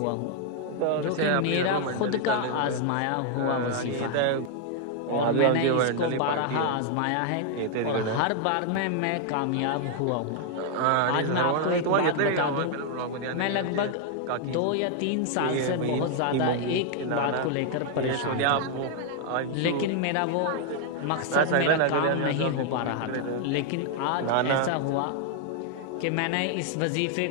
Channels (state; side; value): different; both; correlation 0.00